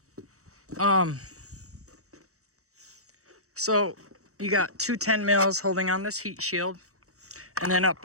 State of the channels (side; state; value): left; late; 0.65 ms